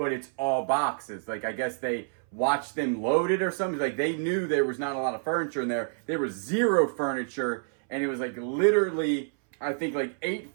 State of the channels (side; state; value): left; silent; 59 dB below the other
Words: it's all boxes. Like, I guess they watched them load it or something. Like, they knew there was not a lot of furniture in there. There was zero furniture, and it was like literally, I think like 8